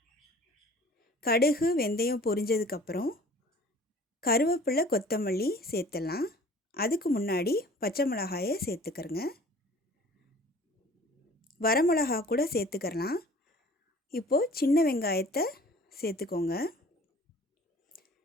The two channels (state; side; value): normal; both; correlation 0.49